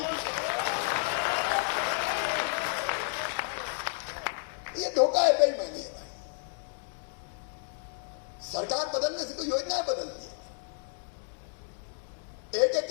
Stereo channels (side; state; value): right; silent; 57 dB below the other